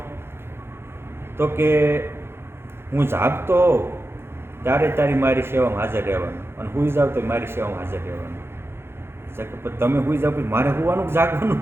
તો કે હું જાગતો હોઉં ત્યારે તારી મારી સેવામાં હાજર રહેવાનું, અને હુઈ જાવ તો મારી સેવામાં હાજર રહેવાનું. તમે હુઈ જાવ પછી મારે હોવાનું જાગવાનું?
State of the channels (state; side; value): late; left; 0.12 ms